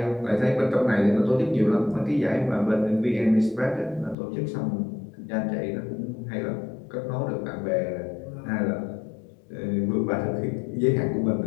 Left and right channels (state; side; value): drops out; right; at 4.2 s